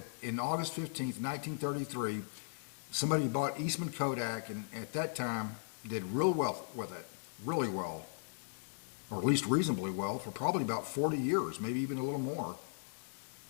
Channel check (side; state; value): right; silent; 53 dB below the other